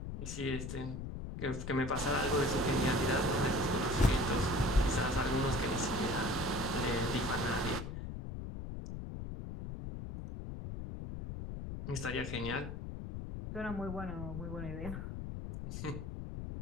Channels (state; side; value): noise; left; rumble, 6 dB below the sound